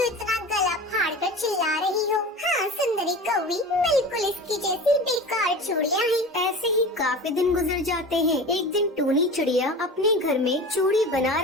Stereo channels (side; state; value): both; normal; correlation 0.34